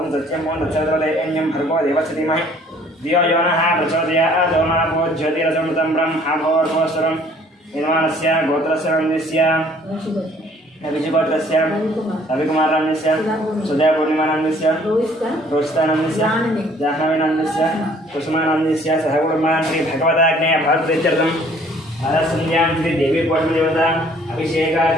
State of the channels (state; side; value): normal; both; correlation 0.57